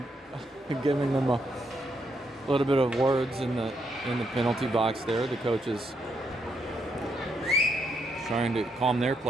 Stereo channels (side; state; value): both; normal; correlation 0.77